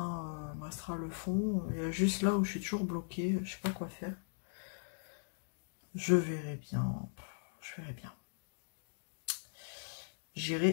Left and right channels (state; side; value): silent; right; digital silence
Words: Il me restera le fond. Il y a juste là où je suis toujours bloquée, je sais pas quoi faire. Je verrai bien. Je verrai bien.